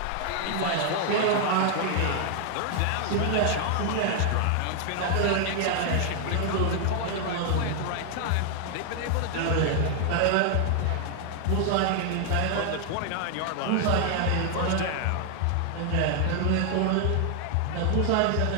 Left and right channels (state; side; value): different; both; correlation 0.00